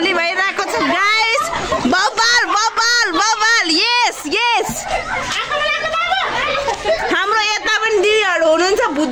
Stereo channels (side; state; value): both; identical; correlation 1.00